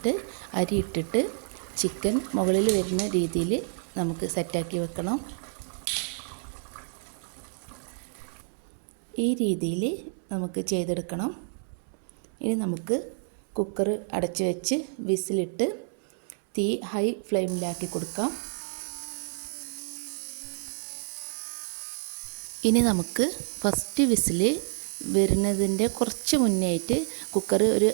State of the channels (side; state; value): left; silent; 59 dB below the other